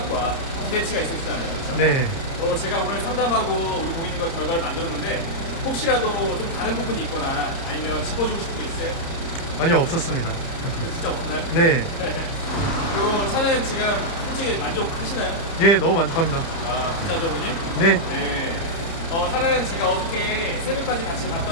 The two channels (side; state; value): right; late; 30 ms